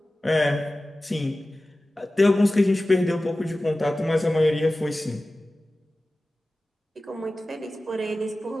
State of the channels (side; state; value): both; normal; correlation 0.96